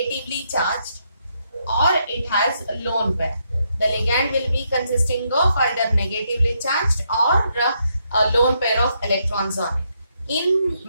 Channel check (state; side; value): inverted; both; correlation -0.77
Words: charged or it has a lone pair. The ligand will be consisting of either negatively charged or a lone pair of electrons on it. In